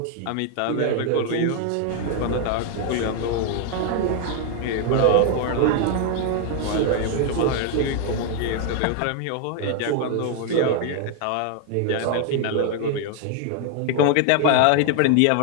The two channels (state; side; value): different; both; correlation 0.00